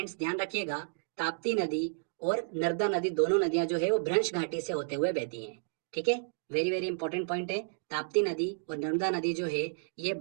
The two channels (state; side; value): silent; left; digital silence